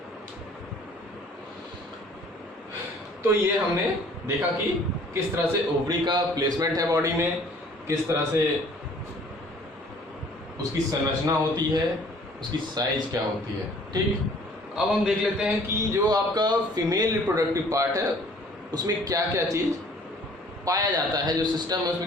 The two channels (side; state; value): both; normal; correlation 0.54